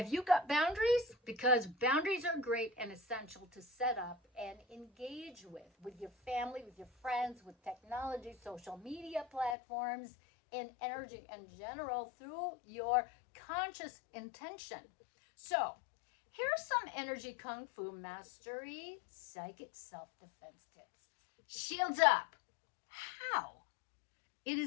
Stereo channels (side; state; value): right; drops out; at 9.6 s